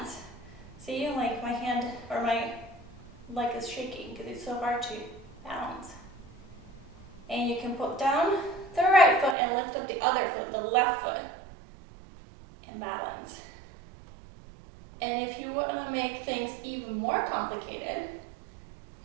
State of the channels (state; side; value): drops out; left; at 9.3 s